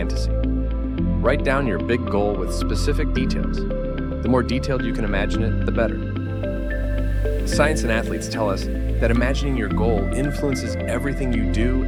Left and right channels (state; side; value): identical; both; correlation 1.00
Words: Write down your big goal with specific details. The more detailed you can imagine it, the better. Science and athletes tell us that imagining your goal influences everything you do